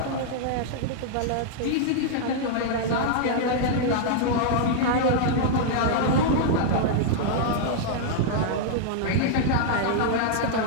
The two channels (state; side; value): different; both; correlation -0.01